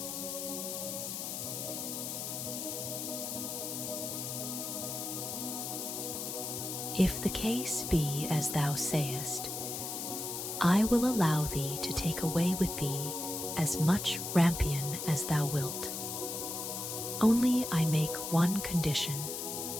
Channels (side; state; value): left; noise; hiss, 5 dB below the sound